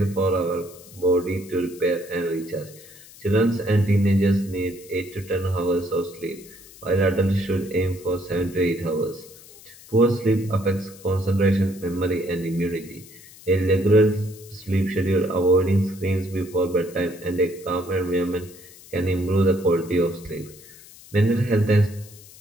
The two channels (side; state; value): left; noise; hiss, 21 dB below the sound